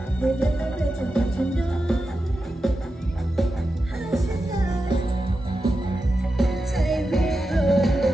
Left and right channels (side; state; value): both; normal; correlation 0.90